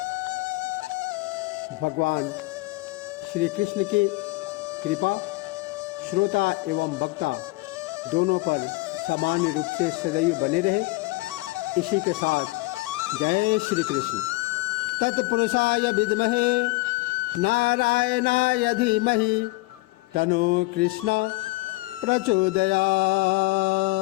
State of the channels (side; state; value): right; quieter; 22.0 dB